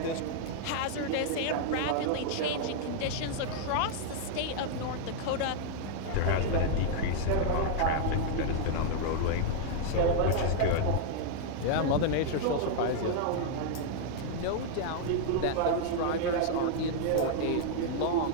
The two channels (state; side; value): different; both; correlation -0.01